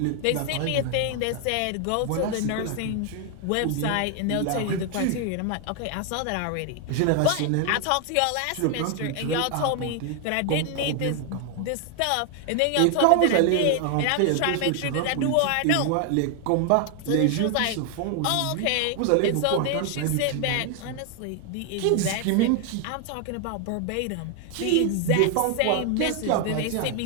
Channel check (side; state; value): both; different; correlation 0.00